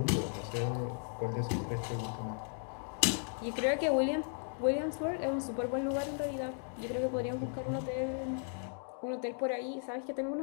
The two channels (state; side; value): silent; right; 54 dB below the other